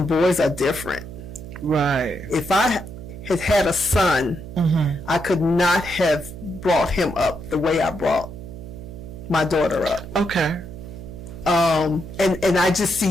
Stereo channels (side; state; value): right; noise; hum, 12 dB below the sound